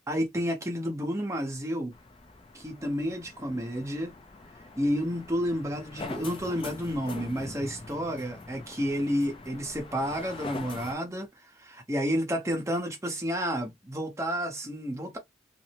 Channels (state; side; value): normal; both; correlation 0.75